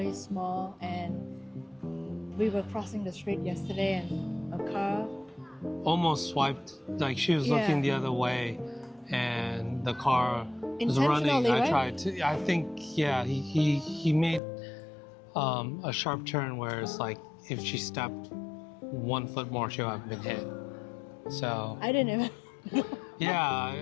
small, and we were crossing the street yesterday and a car almost swiped, like she was looking the other way and the car was running. I think he made a sharp turn where it's like if she stepped 1 foot more she would have been hit. So I didn't even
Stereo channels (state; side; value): drops out; right; at 14.4 s